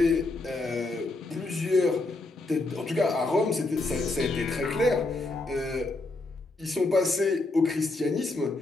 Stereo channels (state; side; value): quieter; right; 3.1 dB